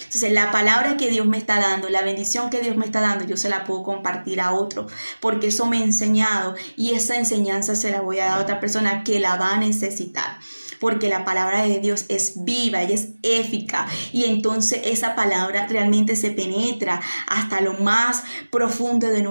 la palabra que Dios me está dando, la bendición que Dios me está dando, yo se la puedo compartir a otro, porque eso me ha enseñado, y esa enseñanza se la voy a dar a otra persona que la va a necesitar. Porque la palabra de Dios es viva y es eficaz, y entonces esa palabra realmente se penetra hasta lo más profundo de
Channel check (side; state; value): both; inverted; correlation -1.00